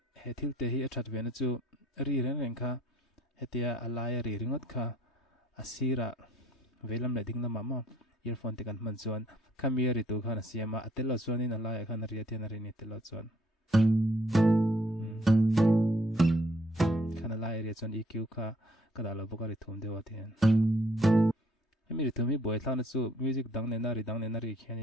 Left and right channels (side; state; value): both; normal; correlation 0.63